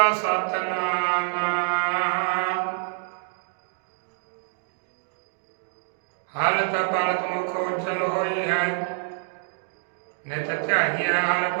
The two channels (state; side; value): silent; left; 61 dB below the other